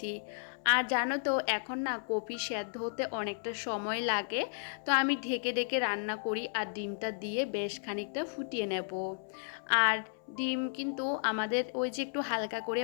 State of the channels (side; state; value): right; silent; 55 dB below the other